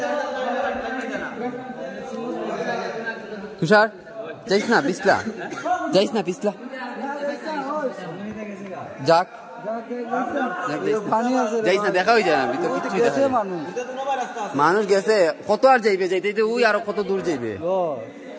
তুষার যাইস না পিছলা, যাইস না পিছলা, যাক যাইস না, দেখা হয়ে যায় না ভিতর কিছুই দেখা যায় না। মানুষ গেছে কত আর যাইবে, যাইতে ওই আরো কত দূর যাইবে,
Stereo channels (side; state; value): both; identical; correlation 1.00